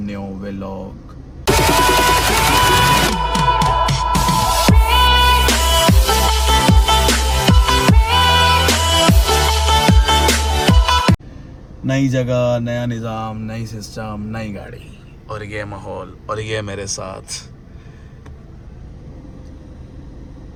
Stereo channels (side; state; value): both; identical; correlation 1.00